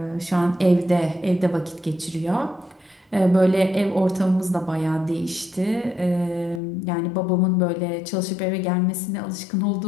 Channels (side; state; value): right; drops out; at 6.6 s